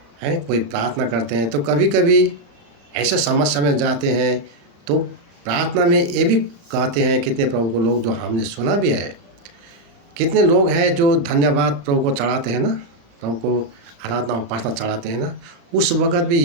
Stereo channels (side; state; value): left; late; 35 ms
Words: कोई प्रार्थना करते हैं, तो कभी कभी ऐसा समस्या में जाते हैं तो प्रार्थना में ये भी कहते हैं, कितने प्रभु को लोग जो हमने सुना भी है, कितने लोग हैं जो धन्यवाद प्रभु को चढ़ाते हैं ना, प्रभु को आराधना उपासना चढ़ाते हैं ना, उस वक़्त भी